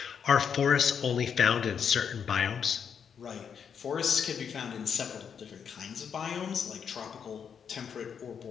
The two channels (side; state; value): right; quieter; 7.3 dB